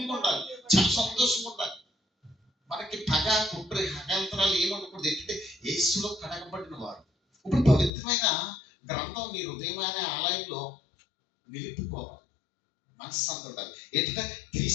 ఉండాలి, చాలా సంతోషంగా ఉండాలి. మనకి పగ కుట్ర హకాంతరాలు ఏమనుకూడదు. ఏంటంటే యేసులో కడగబడిన వారు. ఇప్పుడు పవిత్రమైన గ్రంథం నీ హృదయం అనే ఆలయంలో నిలుపుకోవాలి. మనశ్శాంతి ఉండాలి. ఏంటంటే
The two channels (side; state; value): right; drops out; at 7.9 s